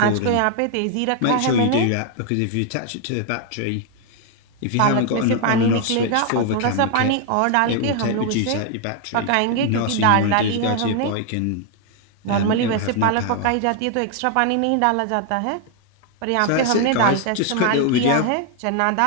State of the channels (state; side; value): different; both; correlation 0.00